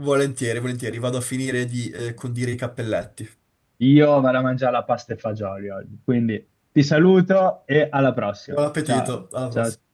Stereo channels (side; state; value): both; identical; correlation 1.00